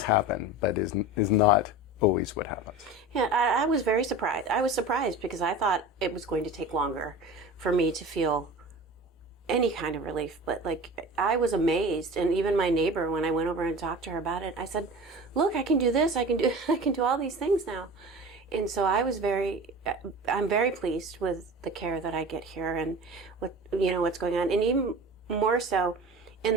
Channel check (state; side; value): normal; both; correlation 0.35